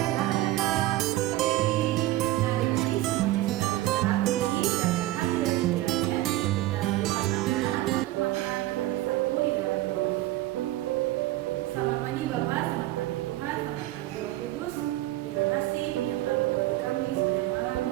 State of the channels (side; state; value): left; quieter; 16.5 dB